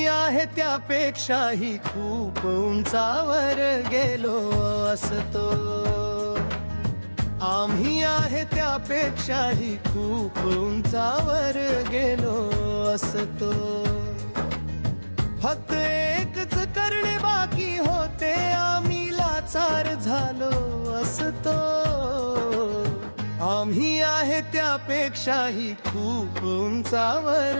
आहे त्यापेक्षाही खूप उंचावर गेलो असतो। आम्ही आहे त्यापेक्षाही खूप उंचावर गेलो असतो। फक्त एकच करणे बाकी होते, आम्ही लाचार झालो असतो। आम्ही आहे त्यापेक्षाही खूप उंचावर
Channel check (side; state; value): both; inverted; correlation -1.00